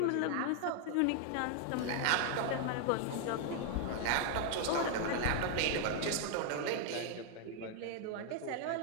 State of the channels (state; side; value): different; both; correlation 0.00